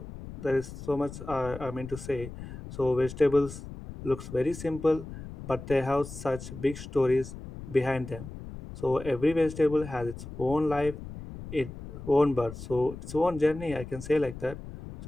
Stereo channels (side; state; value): left; noise; rumble, 12 dB below the sound